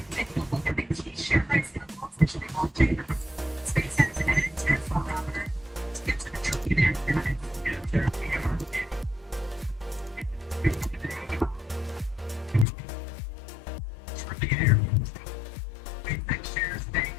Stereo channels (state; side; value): drops out; right; at 12.7 s